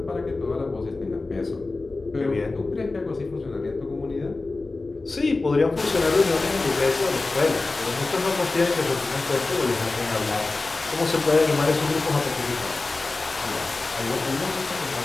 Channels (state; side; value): quieter; right; 3.5 dB